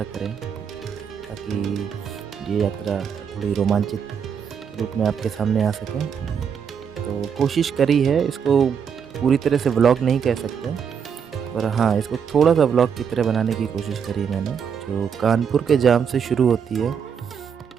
करें ताकि ये यात्रा थोड़ी रोमांचित रूप में आपके सामने आ सके। तो कोशिश करी है, इसको पूरी तरह से व्लॉग नहीं कह सकते, पर हाँ, इसको थोड़ा-सा व्लॉग की तरह बनाने की कोशिश करी है मैंने, जो कानपुर के जाम से शुरू होती है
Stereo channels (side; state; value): left; quieter; 7.1 dB